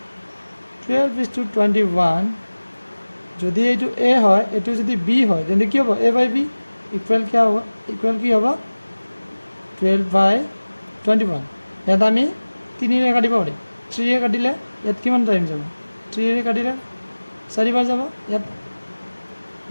12:21 যদি এইটো A হয় এইটো যদি B হয় তেন্তে কি হ'ব A/B ইকুৱেল কি হ'ব 12/21 ইয়াত আমি 3ৰে কাটিব পাৰিম 3ৰে কাটিলে ইয়াত কিমান টাইম যাব 3ৰে কাটিলে 4 বাৰ যাব ইয়াত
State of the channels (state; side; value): inverted; both; correlation -1.00